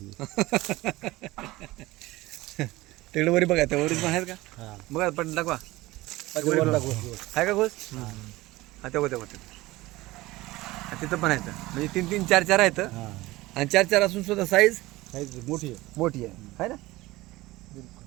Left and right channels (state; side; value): quieter; left; 19.1 dB